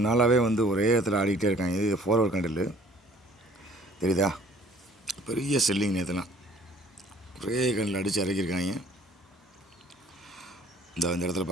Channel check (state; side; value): normal; both; correlation 0.55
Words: நாளாகவே ஒரே இடத்துல ஆடிக்கிட்டே இருக்காங்க. இது ஃபார்வர்ட் கண்டில் தெரியுதா, பெரிய செல்லிங். நேற்றுலாம் ஒரே கண்ணில் அடித்து இறக்கியிருக்காங்க. இந்த இடத்துல